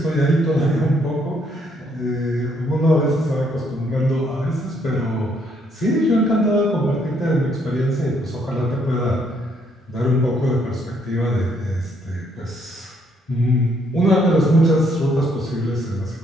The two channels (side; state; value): both; normal; correlation 0.70